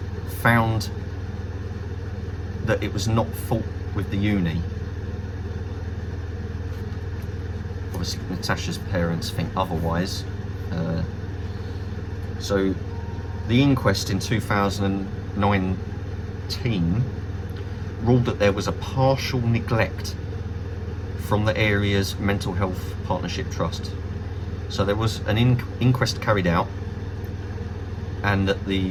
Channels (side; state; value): both; identical; correlation 1.00